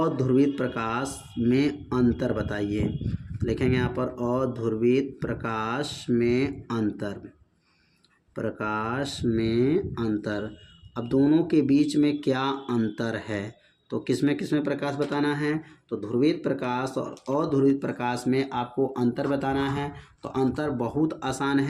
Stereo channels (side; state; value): both; identical; correlation 1.00